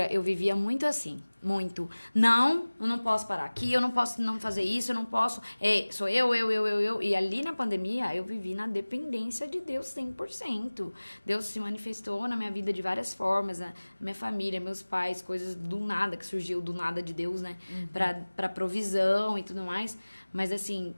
Eu vivia muito assim, muito. Não, eu não posso parar aqui, eu não posso não fazer isso, eu não posso... sou eu. E ali na pandemia, eu vivi na dependência de Deus 100%. Deus se manifestou na minha vida de várias formas. A minha família, meus pais, coisas do nada, que surgiu do nada de Deus, né? Pra provisão e tudo mais. Mas, assim,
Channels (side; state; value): both; inverted; correlation -1.00